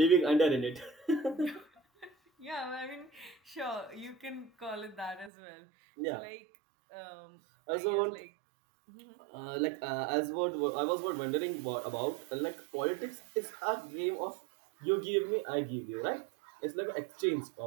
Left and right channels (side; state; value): left; drops out; at 5.3 s